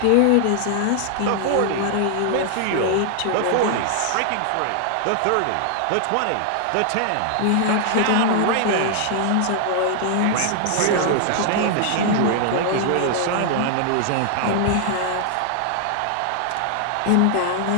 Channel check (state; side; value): different; both; correlation 0.00